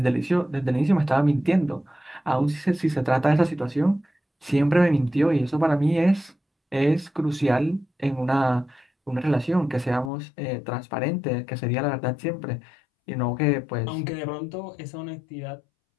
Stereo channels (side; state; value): right; drops out; at 10.1 s